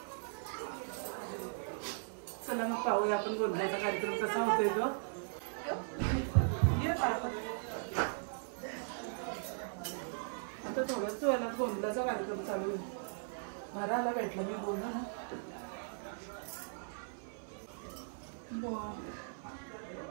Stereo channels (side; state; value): left; silent; 52 dB below the other